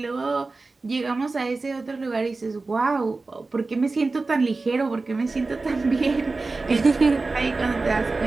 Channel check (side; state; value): left; quieter; 3.6 dB